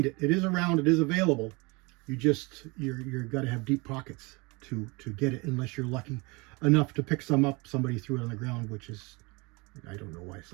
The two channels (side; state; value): left; quieter; 26.9 dB